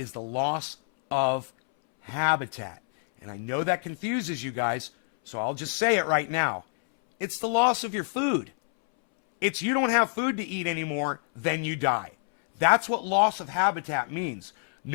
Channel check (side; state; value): right; silent; 60 dB below the other